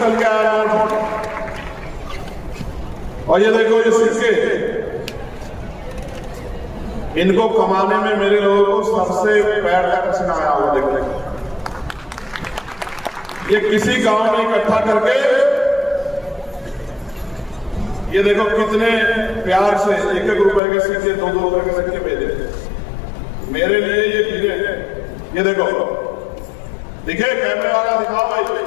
के आया नोट। और ये देखो ये सिक्के, इनको कमाने में मेरे लोगों को सबसे पैर का पसीना आया हुआ। देखो ये किसी गांव में इकट्ठा करके, ये देखो कितने प्यार से 1-1 रुपए के सिक्के, 2-2 रुपए के सिक्के भेजे मेरे लिए। ये हीरे हैं, ये देखो, दिखे कैमरे वाला, दिखाओ भाई,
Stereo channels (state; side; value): drops out; right; at 20.6 s